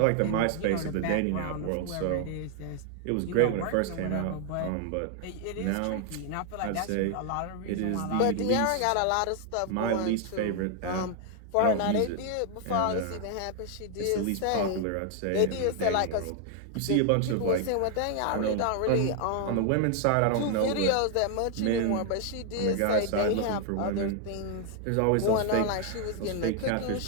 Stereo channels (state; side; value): different; both; correlation 0.00